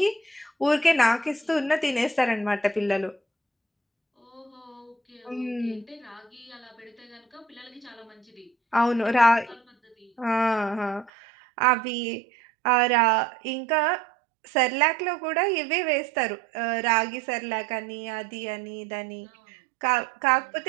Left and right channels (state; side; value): drops out; left; at 11.1 s